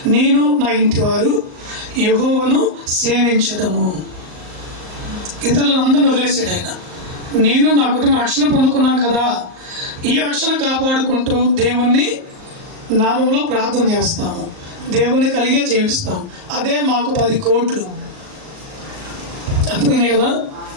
నేను నా ఇంటి వారు యెహోవాను సేవించదము. ఇతరులందరిని వదిలేసాడు ఆయన. నేను నా కుటుంబం రక్షణ పొందుకున్నాను కదా, ఈ రక్షణ కాపాడుకుంటూ దేవుణ్ణి నామంలో ప్రార్థన చేస్తాము, దేవుణ్ణి కలిగే జీవిస్తాం. అదే మాకు 10 కోట్లు. అర్థమైనాయి కదా?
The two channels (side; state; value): left; late; 38 ms